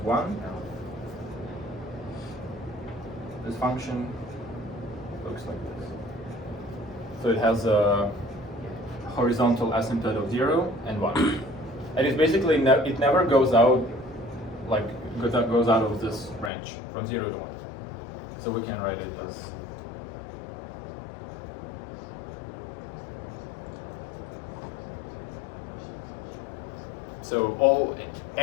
This function looks like this. So it has a horizontal asymptote of 0 and 1. And it's basically, it never goes out, like, goes out of this range from 0 to 1. So we can write it as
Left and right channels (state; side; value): drops out; right; at 16.5 s